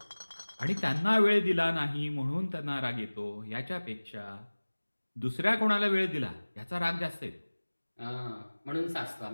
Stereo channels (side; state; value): both; inverted; correlation -1.00